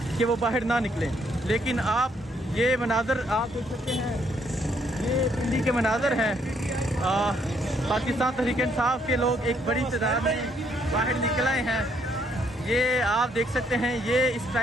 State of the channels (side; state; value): both; normal; correlation 0.70